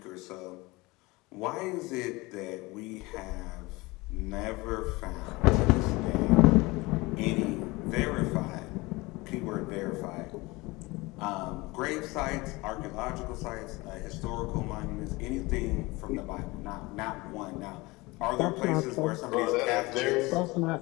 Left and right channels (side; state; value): right; quieter; 22.9 dB